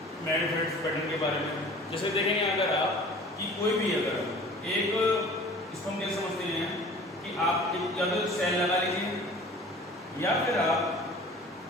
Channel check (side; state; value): both; normal; correlation 0.45